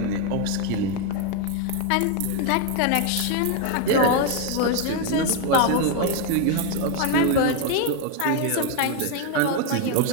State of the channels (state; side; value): different; both; correlation 0.01